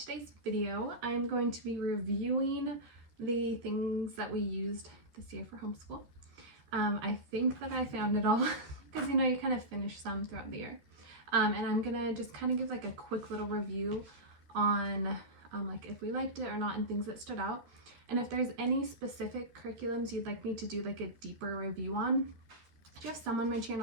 video. I'm going to be reviewing the things that we used this year for homeschool. I think that I found it all because you kind of finish some throughout the year. And I'm gonna just kind of give like a quick little review on like if we liked it or not and things that stood out. And if there's any specific curriculums you'd like me to do like a deeper review on, I do have some on my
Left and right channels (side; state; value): left; late; 13 ms